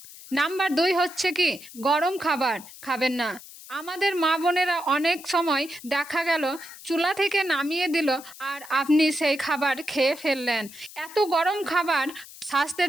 নাম্বার ২ হচ্ছে কি, গরম খাবার খাবেন না। আমাদের মা বোনেরা অনেক সময় দেখা গেল চুলা থেকে নামিয়ে দিল আর আপনি সেই খাবার খেয়ে ফেললেন। এত গরম খাবার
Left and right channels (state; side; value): noise; left; hiss, 17 dB below the sound